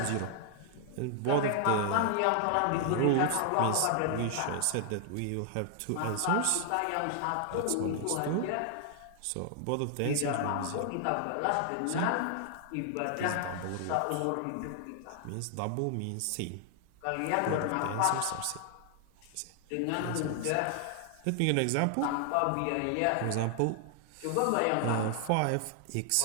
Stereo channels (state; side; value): different; both; correlation 0.00